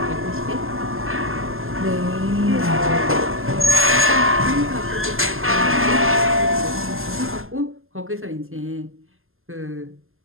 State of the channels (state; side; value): late; left; 0.60 ms